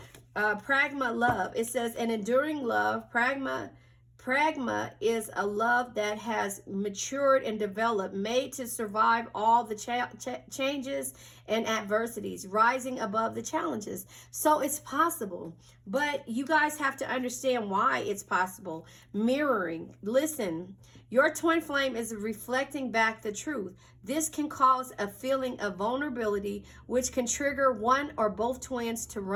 pragma love. It says an enduring love. Pragma is a love that has matured and developed, made to survive all the changes and adversities, rising above the challenges. So it's possible, but you guys have to understand why it's possible. Mirroring. Listen, your twin flame is reflecting back the truth. This can cause a feeling of vulnerability, which can trigger one or both twins to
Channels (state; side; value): identical; both; correlation 1.00